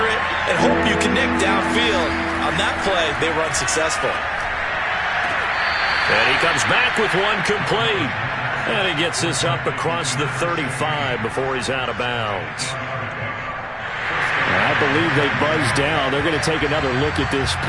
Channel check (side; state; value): both; identical; correlation 1.00